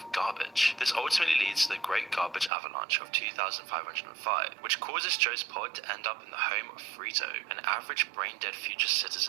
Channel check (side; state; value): left; drops out; at 2.5 s